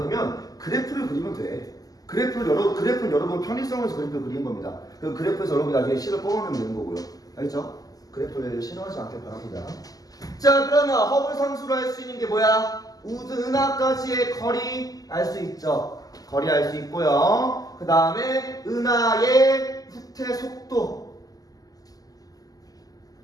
그래프를 그리면 돼. 그래프는 여러분 편의성에서 그래프를 그리는 겁니다. 그 그래프에서 여러분이 나중에 식을 뽑아내면 되는 거고요. 알겠죠? 그래프를 싫어하지 않길 바랍니다. 자, 그러면 허블 상수로 할 수 있는 게 뭐야? 은하까지의 거리 알 수 있죠. 거리 알 수 있고요. 그 다음에 은하의 후퇴 속도,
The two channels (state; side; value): late; right; 0.17 ms